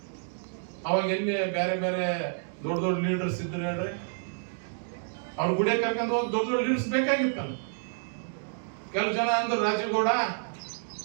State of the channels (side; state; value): left; silent; digital silence